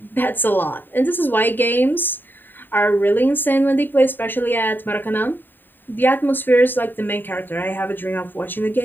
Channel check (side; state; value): right; late; 0.092 ms